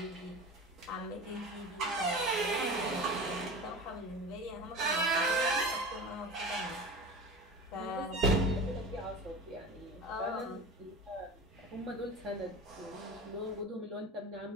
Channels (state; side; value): normal; both; correlation 0.33